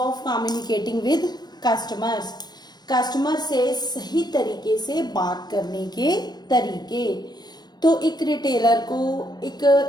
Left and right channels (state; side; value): late; right; 0.20 ms